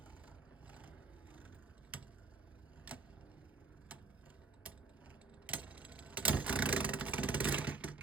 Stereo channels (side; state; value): left; quieter; 4.3 dB